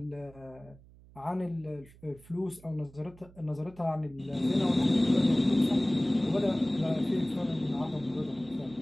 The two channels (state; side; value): noise; right; hum, 23 dB below the sound